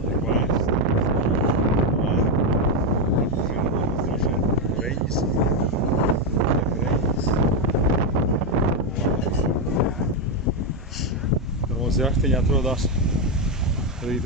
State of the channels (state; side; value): normal; both; correlation 0.05